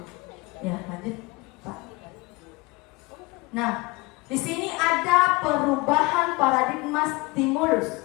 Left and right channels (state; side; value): quieter; right; 23.8 dB